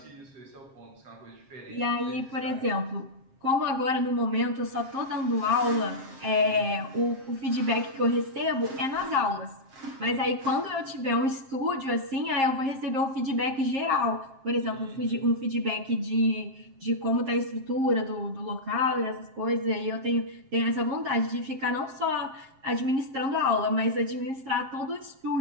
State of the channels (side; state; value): left; late; 7.5 ms